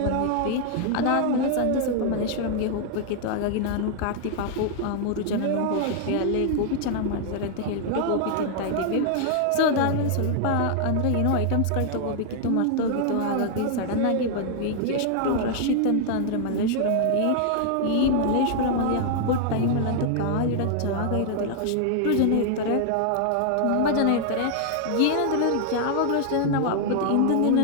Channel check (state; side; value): different; both; correlation 0.00